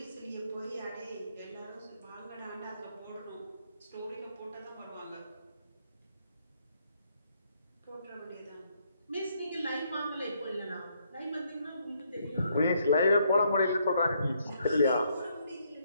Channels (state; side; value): inverted; both; correlation -0.72